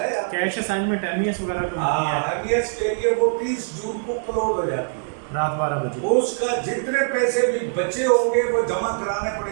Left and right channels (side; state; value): left; silent; digital silence